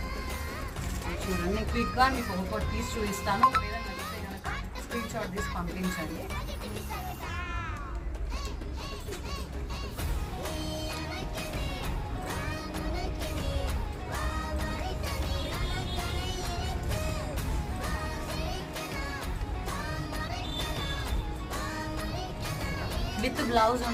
చూడండి, క్విక్గా మీకు ఒక్కొక్కటి తీసి చూపిస్తాను. ఒకవేళ నచ్చితే కనుక స్క్రీన్ షాట్ తీసి పంపించండి. విత్ బ్లౌజ్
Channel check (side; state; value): both; identical; correlation 1.00